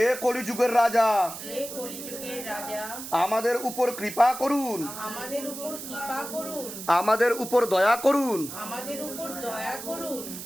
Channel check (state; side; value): noise; right; hiss, 10 dB below the sound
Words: কলিযুগের রাজা, আমাদের উপর কৃপা করুন, আমাদের উপর দয়া করুন,